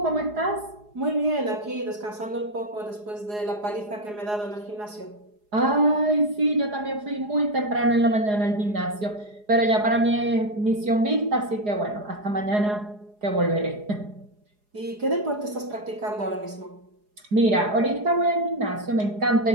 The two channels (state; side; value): late; left; 4.8 ms